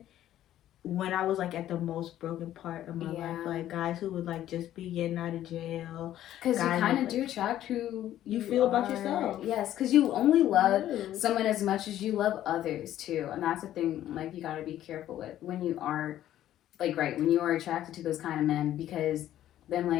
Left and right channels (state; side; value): quieter; right; 12.5 dB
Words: when I was like at the most broken part of my life, like guys who would like just be getting out of jail. Because you kind of do attract who you feel about yourself. Yes, because you only love someone as much as you love others too, and that's the thing. Like, you got to be careful with when you are, like, when you are attracted to those kind of men, because then